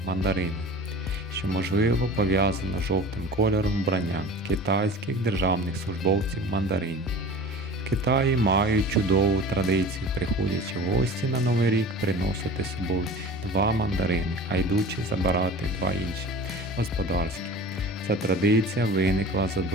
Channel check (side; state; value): both; normal; correlation 0.39